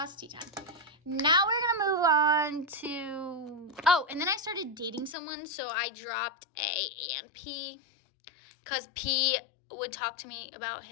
tea time. Now we're going to move on to, oh, and then I started dating someone. So I dropped A and P because P would talk to me about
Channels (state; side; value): drops out; right; at 5.2 s